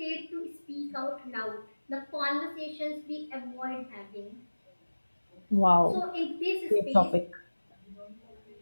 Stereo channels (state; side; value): inverted; both; correlation -1.00